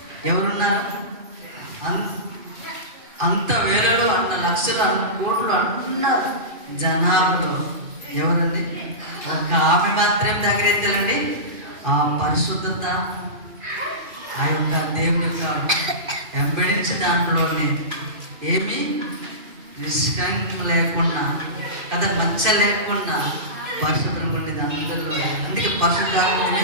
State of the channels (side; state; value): left; late; 2.4 ms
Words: ఎవరున్నారు? అంత వేలలో అన్న లక్షలు అన్న కోట్లు అన్న జనాభాలో ఎవరండి? ఒక ఆమె మాత్రం దగ్గరెత్తాలండి. ఆ పరిశుద్ధత ఆ యొక్క దేవుని యొక్క వెంబడించి దాంట్లోనే ఏమీ నిష్కంకం లేకుండా కదా, మచ్చ లేకుండా పరిశుభ్రంగా ఉండేది అందరిలో. అందుకే పరిశుద్ధాత్మ